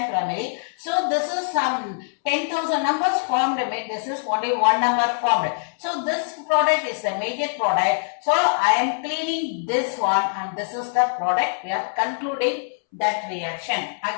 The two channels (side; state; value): right; silent; 63 dB below the other